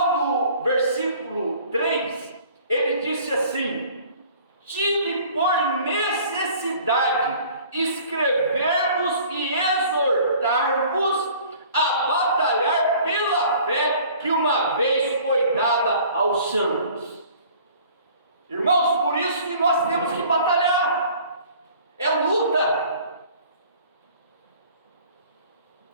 do versículo 3, ele disse assim: tive por necessidade escrever-vos e exortar-vos a batalhar pela fé que uma vez foi dada aos santos. Irmãos, por isso que nós temos que batalhar, é luta.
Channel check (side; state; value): both; inverted; correlation -0.50